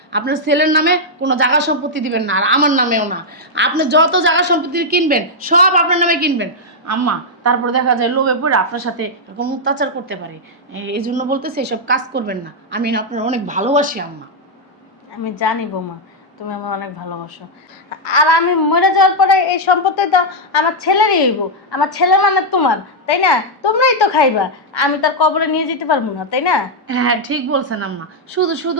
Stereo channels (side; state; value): both; normal; correlation -0.03